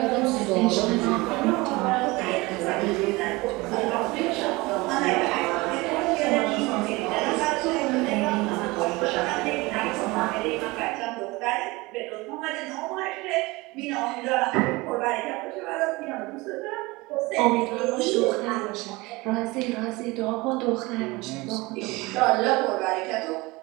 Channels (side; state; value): left; quieter; 22.7 dB